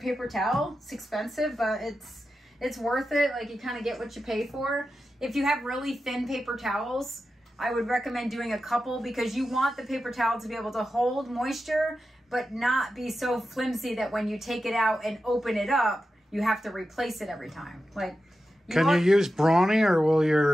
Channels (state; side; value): normal; both; correlation 0.91